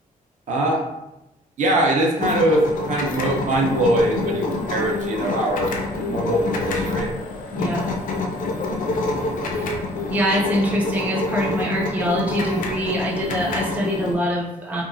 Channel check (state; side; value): normal; both; correlation 0.52